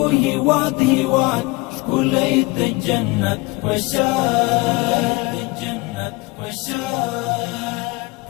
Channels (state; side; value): quieter; right; 24.2 dB